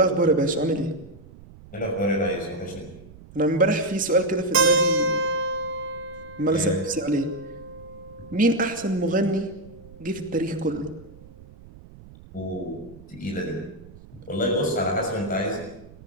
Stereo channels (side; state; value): right; noise; rumble, 20 dB below the sound